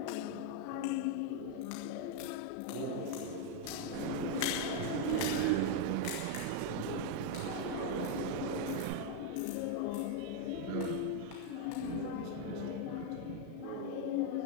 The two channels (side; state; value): both; different; correlation 0.01